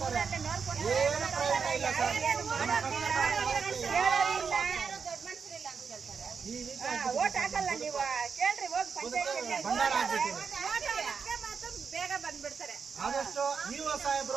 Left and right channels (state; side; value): quieter; left; 5.9 dB